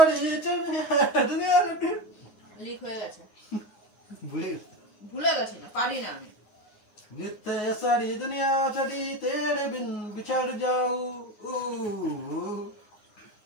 দুনিয়া লিক হয়ে গেছে, ভুলে ভুলে গেছি না, পারি না আমি। जितने सारी दुनिया छड़ी तेरे बिन बिछड़ जाऊं।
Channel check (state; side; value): late; right; 9.5 ms